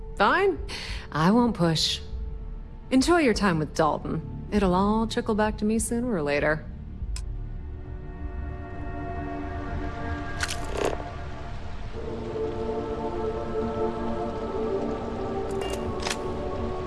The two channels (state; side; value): identical; both; correlation 1.00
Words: fine. I won't push. Enjoy your time with Dalton. It'll all trickle back to me sooner or later.